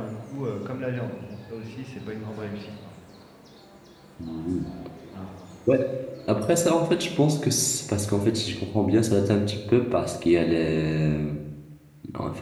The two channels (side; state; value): both; identical; correlation 1.00